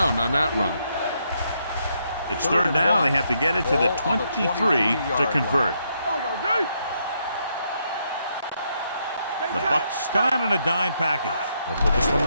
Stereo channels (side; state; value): both; inverted; correlation -0.76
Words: on that run. It's third down, and they have to get it to the 23 to convert. The Bucs come out in a dime package. They'll put this one